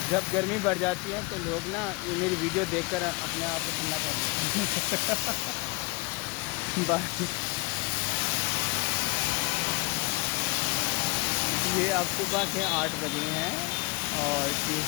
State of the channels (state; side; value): quieter; right; 26.9 dB